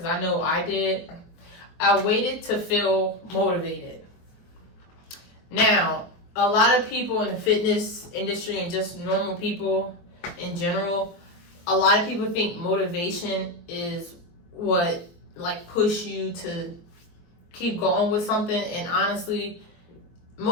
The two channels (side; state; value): right; late; 23 ms